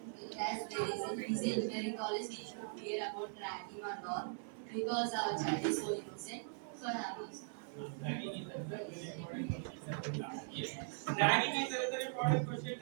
As there is a busy engineering college, we should fear about ragging or not because our child is so innocent. So I have this. Yes. Ragging is another important question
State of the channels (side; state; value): left; silent; 51 dB below the other